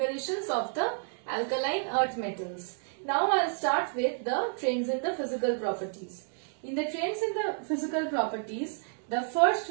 of the alkaline earth metals. Now I will start with the trends in the physical properties. In the trends in the physical properties, the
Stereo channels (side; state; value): left; silent; 58 dB below the other